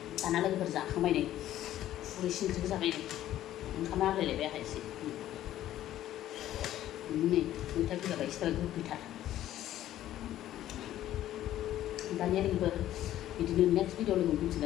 Karena lagi berzakamai nih, urusin berzakamai nih, karena ada lebih apa sih? Ini, kita juga baik sekali kita. Tanya nih ber, di next video lagi mungkin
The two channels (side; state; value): right; quieter; 13.0 dB